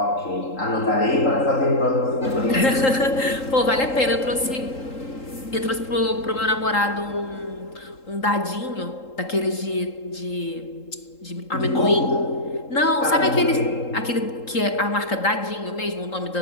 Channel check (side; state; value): right; late; 3.8 ms